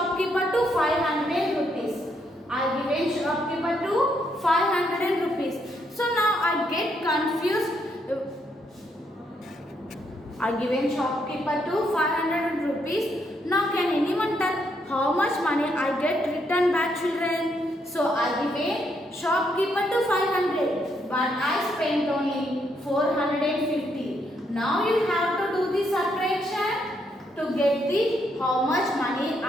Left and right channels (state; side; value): normal; both; correlation 0.75